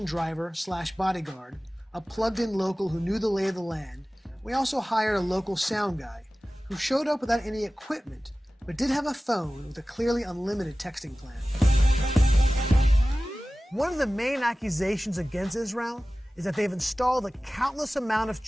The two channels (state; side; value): normal; both; correlation 0.97